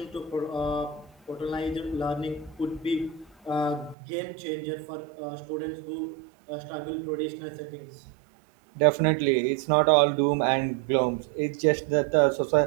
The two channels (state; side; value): drops out; left; at 4.0 s